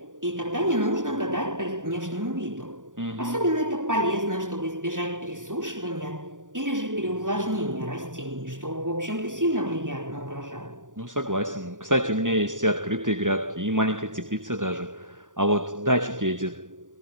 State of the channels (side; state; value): left; late; 0.88 ms